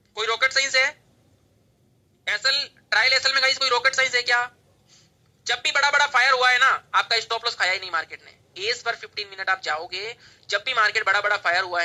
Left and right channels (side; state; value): both; identical; correlation 1.00